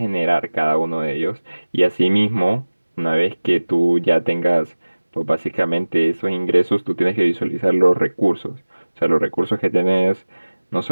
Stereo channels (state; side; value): inverted; both; correlation -1.00